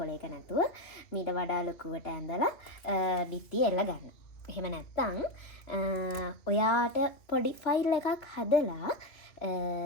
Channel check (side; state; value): right; late; 2.8 ms